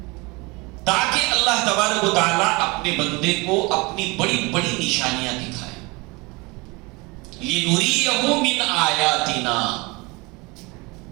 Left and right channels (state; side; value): quieter; left; 25.6 dB